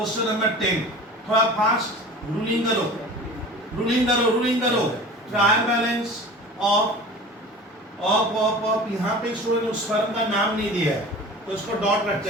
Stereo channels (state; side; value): normal; both; correlation 0.39